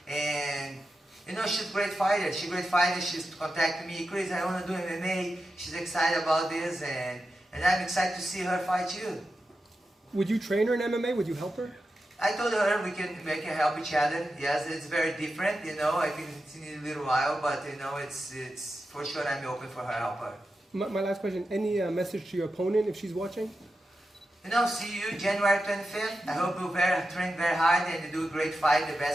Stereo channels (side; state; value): both; normal; correlation 0.90